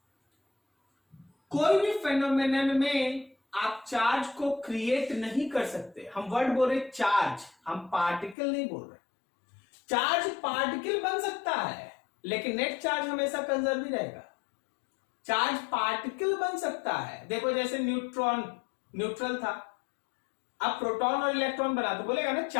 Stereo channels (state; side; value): drops out; right; at 8.3 s